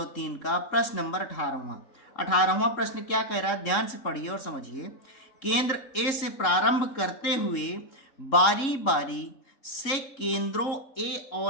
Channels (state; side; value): late; right; 3.7 ms